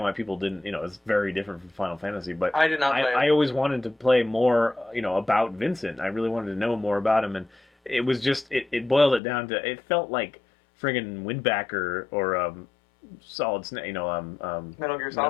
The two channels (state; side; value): drops out; right; at 9.2 s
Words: why people didn't. It's very different from Final Fantasy. But I did not play it. I always wanted to play more, about Vincent. I really wanted to know more about him, and it was just it boiled it down to it felt like friggin' Windbacker or Solid Snake, Metal Gear Solid?